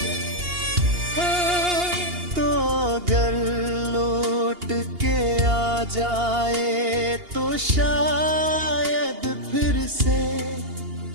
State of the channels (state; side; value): late; left; 2.8 ms